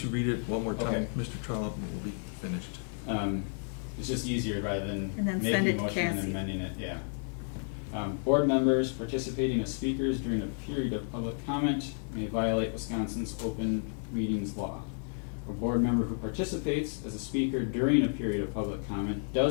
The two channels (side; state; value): right; silent; 57 dB below the other